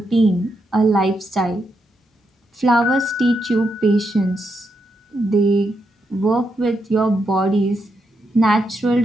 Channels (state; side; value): normal; both; correlation 0.82